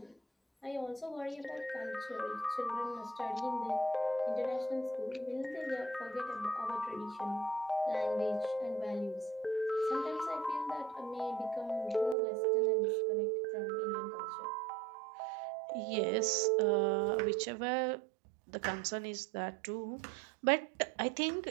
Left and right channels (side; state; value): left; drops out; at 12.2 s